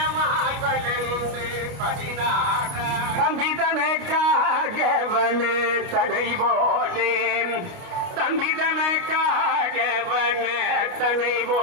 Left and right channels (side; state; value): left; late; 29 ms